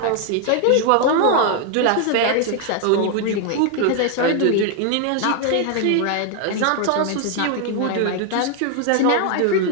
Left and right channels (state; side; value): different; both; correlation 0.00